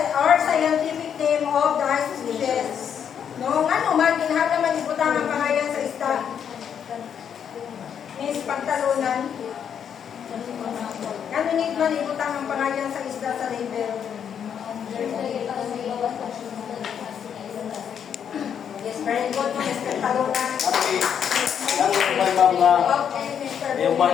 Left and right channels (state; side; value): quieter; right; 8.2 dB